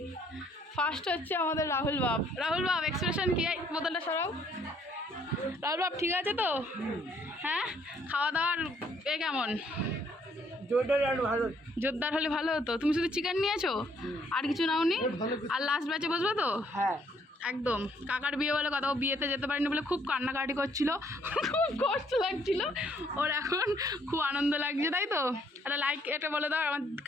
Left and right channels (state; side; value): normal; both; correlation 0.66